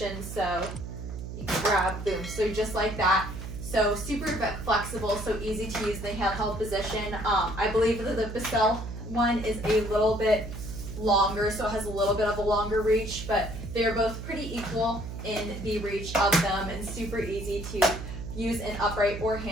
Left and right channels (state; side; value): noise; right; hum, 8 dB below the sound